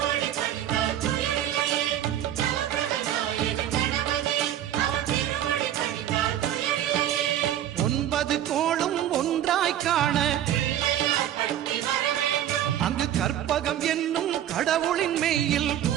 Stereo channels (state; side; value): quieter; left; 11.4 dB